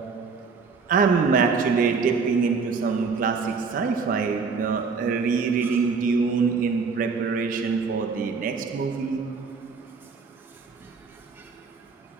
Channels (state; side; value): quieter; left; 5.0 dB